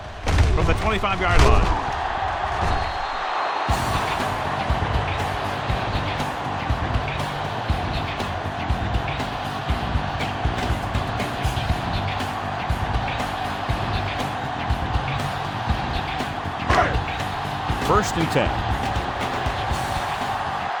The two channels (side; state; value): both; identical; correlation 1.00